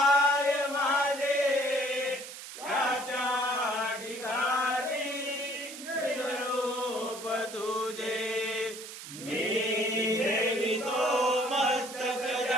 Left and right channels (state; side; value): noise; right; hiss, 12 dB below the sound